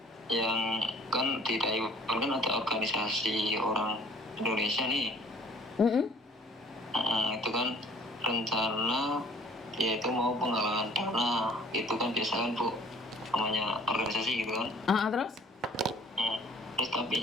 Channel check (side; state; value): both; normal; correlation 0.54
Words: yang kan di Taiwan kan ada organisasi orang Indonesia nih. Itu kan rencana yaitu mau penggalangan dana, itu kan biasa kan, Bu, namanya organisasi gitu kan. Terus? Terus